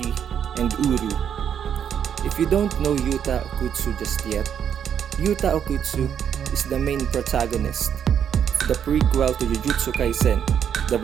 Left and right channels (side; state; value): left; quieter; 8.5 dB